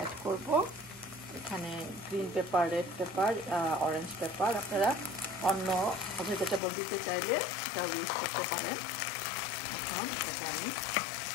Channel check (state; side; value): drops out; right; at 6.6 s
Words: করব এখানে green paper, red paper, orange paper. আপনারা অন্য ভেজিটেবল দিতে চাইলে এটাও ইউজ করতে পারেন। এখন এটাকে আমি